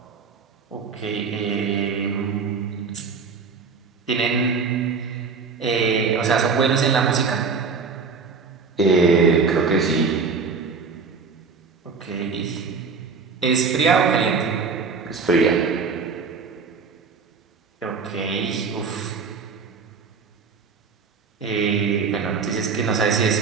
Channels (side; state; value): left; quieter; 5.1 dB